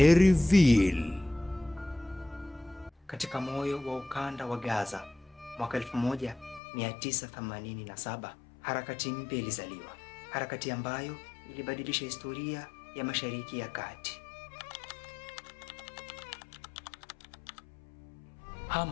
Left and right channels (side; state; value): right; drops out; at 6.6 s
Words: Reveal. Katika moyo wa ukanda wa Gaza mwaka 1987, harakati mpya ilizaliwa, harakati ambayo ilibadilisha historia ya Mashariki ya Kati.